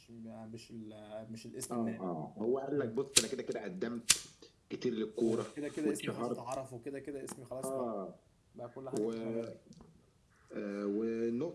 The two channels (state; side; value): identical; both; correlation 1.00